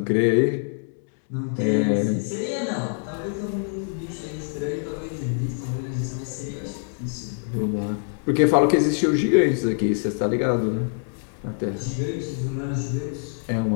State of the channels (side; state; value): right; silent; digital silence